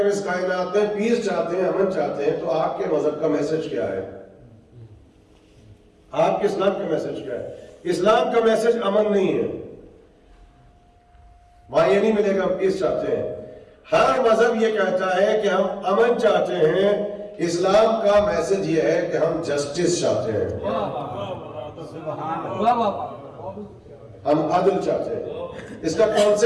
اس کائنات میں پیس چاہتے ہیں، امن چاہتے ہیں، تو آپ کے مذہب کا میسج کیا ہے؟ آپ کے اسلام کا میسج کیا ہے؟ اسلام کا میسج امن نہیں ہے، وہاں یہ نہیں ملے گا ہم پیس چاہتے ہیں. ہر مذہب یہ کہتا ہے کہ ہم امن چاہتے ہیں. اسلام کا میسج یہ ہے کہ ہم جسٹس چاہتے ہیں، ہم عدل چاہتے ہیں. اس کا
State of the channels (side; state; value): both; identical; correlation 1.00